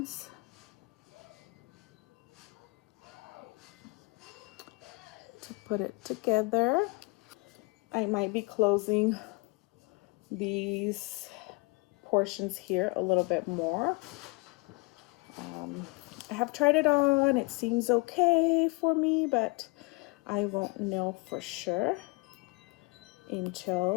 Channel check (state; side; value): quieter; right; 28.3 dB